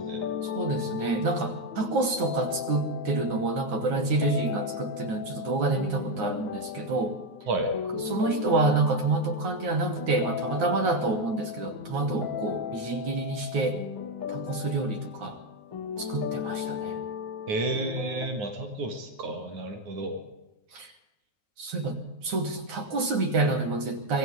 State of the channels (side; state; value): left; late; 9.5 ms